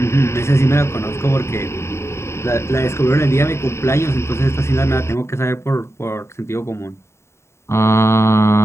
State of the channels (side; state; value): right; late; 0.13 ms